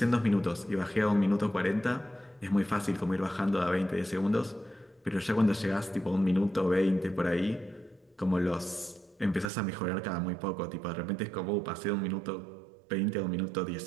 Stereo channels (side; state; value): left; drops out; at 9.5 s